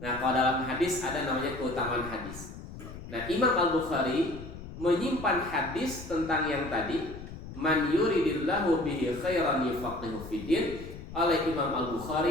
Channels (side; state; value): left; noise; rumble, 12 dB below the sound